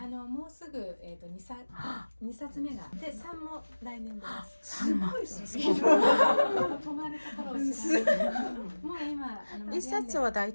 うすぐ2冊目がで3も来年出ます。すごいですね。止まるところを知らない。もう今1冊は大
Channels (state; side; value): inverted; both; correlation -1.00